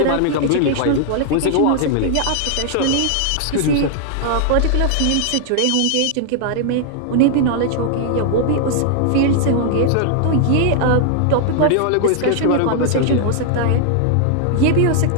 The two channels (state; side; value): different; both; correlation 0.00